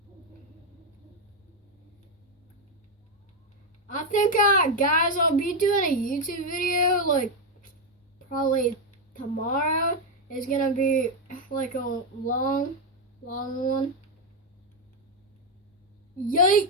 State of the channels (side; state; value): both; normal; correlation 0.05